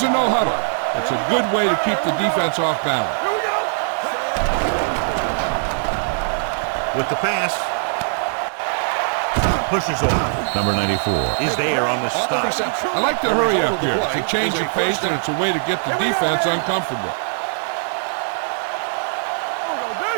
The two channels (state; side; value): silent; left; digital silence